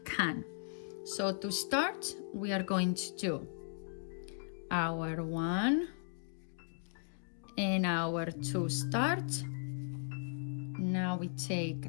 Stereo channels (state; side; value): silent; right; digital silence